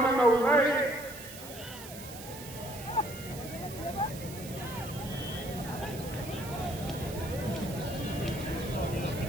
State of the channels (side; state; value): right; noise; hiss, 13 dB below the sound